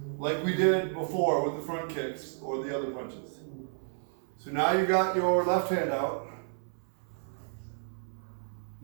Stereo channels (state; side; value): silent; left; 57 dB below the other